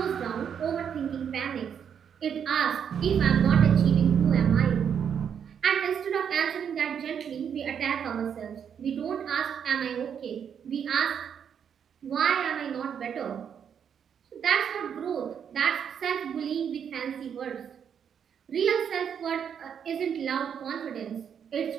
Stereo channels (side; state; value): left; quieter; 7.9 dB